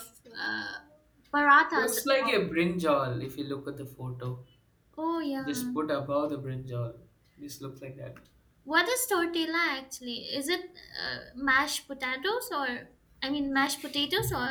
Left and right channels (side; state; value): both; identical; correlation 1.00